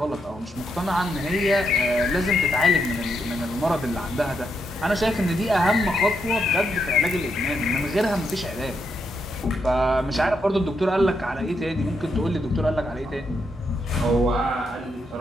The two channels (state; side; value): normal; both; correlation 0.80